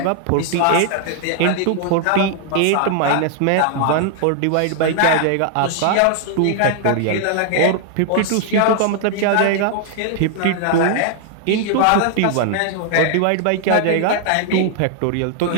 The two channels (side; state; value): both; different; correlation 0.00